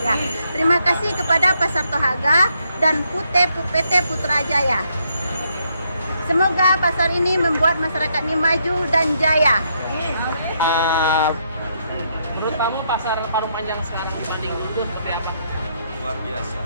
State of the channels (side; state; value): both; inverted; correlation -0.75